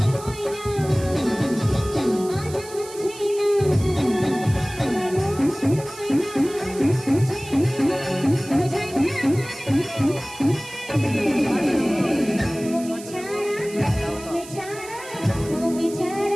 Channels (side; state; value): right; noise; hiss, 16 dB below the sound